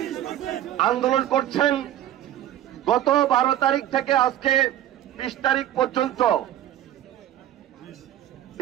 আন্দোলন করছেন গত 12 তারিখ থেকে আজকে 20 তারিখ পর্যন্ত,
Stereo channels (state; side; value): quieter; left; 12.1 dB